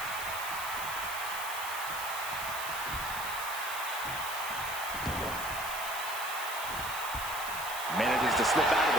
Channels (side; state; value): right; noise; hiss, 8 dB below the sound